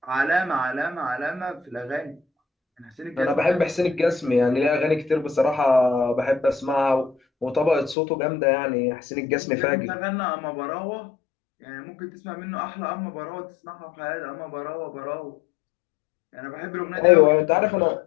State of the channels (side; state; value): right; drops out; at 8.0 s